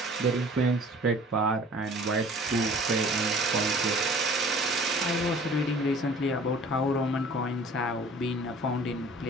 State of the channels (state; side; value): normal; both; correlation 0.48